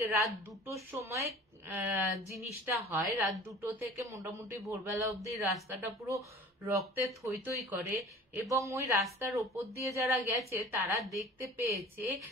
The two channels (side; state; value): both; normal; correlation 0.44